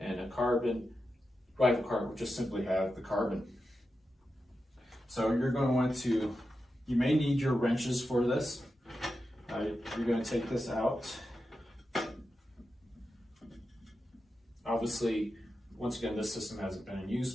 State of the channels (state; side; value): normal; both; correlation 0.90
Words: a carbon. Rival cart will just simply have the carbon. So you're going to want to, you may need your wrenches for this. You're going to take this out. Obviously, once again, this system hasn't been in use,